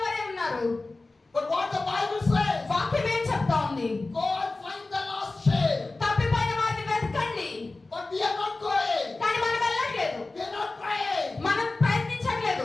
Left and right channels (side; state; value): right; quieter; 3.3 dB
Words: వరే ఉన్నారు. But what the Bible says, వాక్యం ఏం చెప్తా ఉంది? go and find the lost sheep. తప్పిపోయిన వారిని వెతకండి. But we are not going. కానీ మనం వెళ్ళట్లేదు, We are not praying. మనం